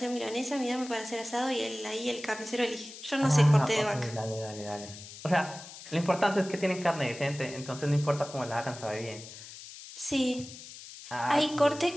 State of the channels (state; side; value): noise; left; hiss, 14 dB below the sound